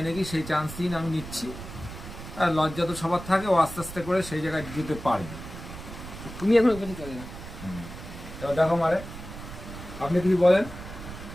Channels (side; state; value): right; noise; rumble, 12 dB below the sound